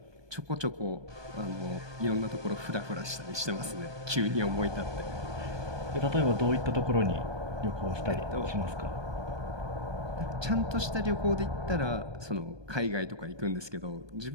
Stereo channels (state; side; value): late; left; 1.2 ms